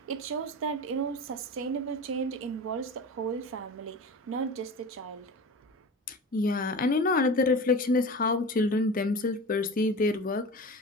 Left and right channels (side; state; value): both; normal; correlation 0.32